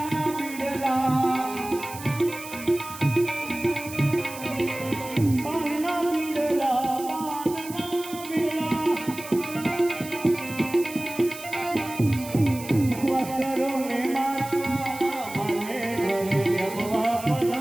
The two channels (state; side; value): noise; right; hiss, 14 dB below the sound